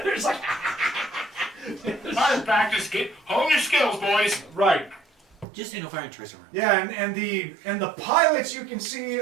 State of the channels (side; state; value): left; drops out; at 5.5 s